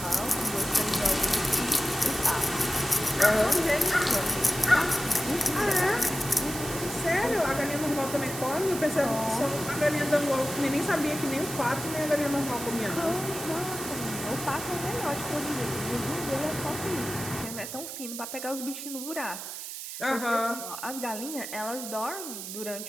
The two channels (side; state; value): right; noise; hiss, 8 dB below the sound